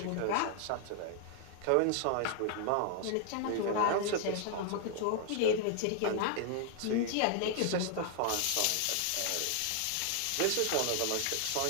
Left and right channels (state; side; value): different; both; correlation 0.00